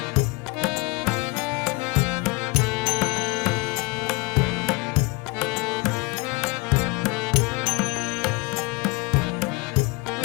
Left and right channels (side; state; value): right; quieter; 26.2 dB